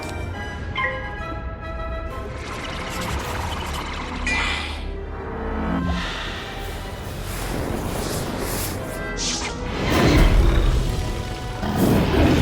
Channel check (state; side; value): identical; both; correlation 1.00